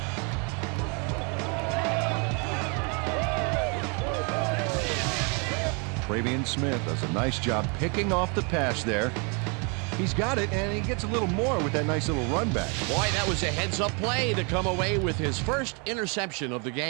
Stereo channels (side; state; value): left; quieter; 34.8 dB